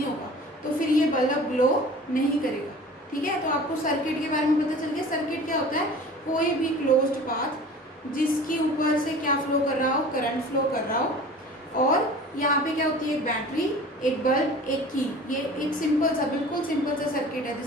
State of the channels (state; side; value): normal; both; correlation 0.42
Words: होगा, तो फिर ये बल्ब ग्लो नहीं करेगा। ठीक है, तो आपको सर्किट के बारे में पता चल गया। सर्किट क्या होता है, कोई भी क्लोज्ड पाथ जिसके ऊपर से क्या फ्लो कर रहा हो, करंट फ्लो कर रहा हो। और यहाँ पे क्या होती है, एक बैटरी, एक बल्ब, एक की। ये एक सिंपल सा, बिल्कुल सिंपल सा सर्किट है